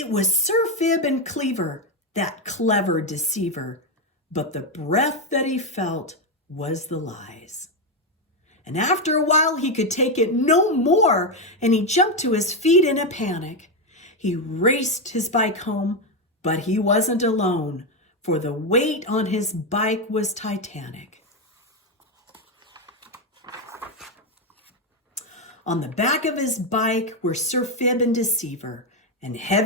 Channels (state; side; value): normal; both; correlation 0.07